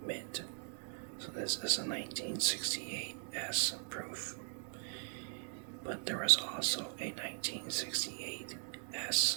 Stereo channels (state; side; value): silent; left; 51 dB below the other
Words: mint. So this is a 1968S proof. But there was also a 1968S